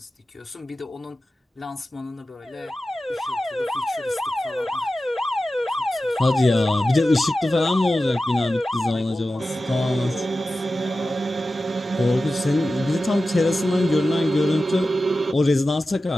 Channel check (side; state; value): both; normal; correlation 0.94